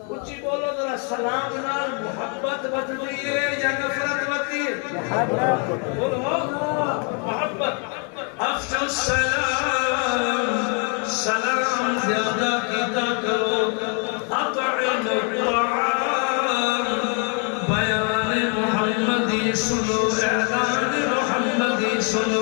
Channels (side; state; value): right; quieter; 38.7 dB